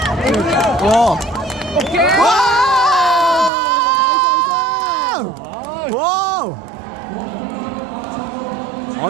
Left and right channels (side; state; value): left; drops out; at 3.5 s